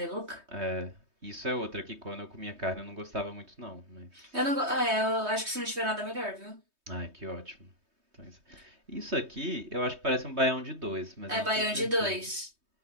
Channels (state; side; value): late; left; 3.2 ms